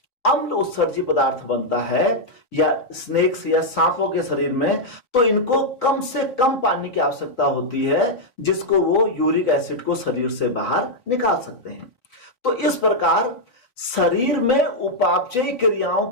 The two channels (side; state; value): right; late; 4.1 ms